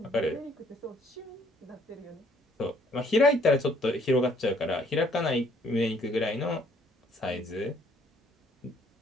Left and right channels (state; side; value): normal; both; correlation 0.63